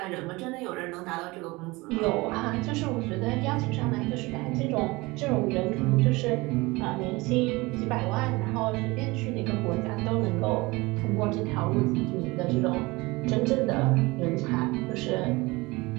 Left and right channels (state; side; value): quieter; left; 22.8 dB